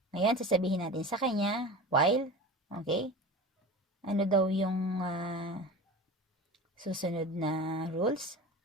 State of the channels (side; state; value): both; normal; correlation 0.33